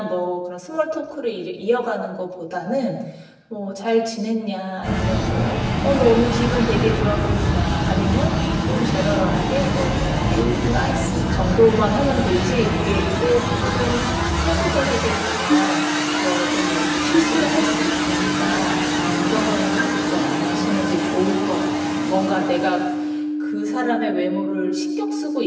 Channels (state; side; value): identical; both; correlation 1.00